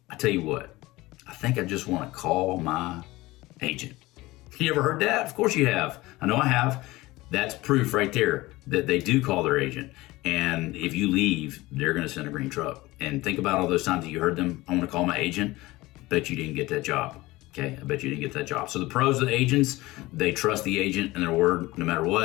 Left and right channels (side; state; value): right; quieter; 19.8 dB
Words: tell you what, I think I just want to call my agent. You ever heard that? Of course you have. I know I have. That's proof right there that they do call their agent. And if you leave, they're going to send a green truck. And think about all those times that you heard them, I want to call my agent. Bet you didn't get that job. Okay, I bet you didn't get that job. So the pros of the agents, they trust the agent and their word no matter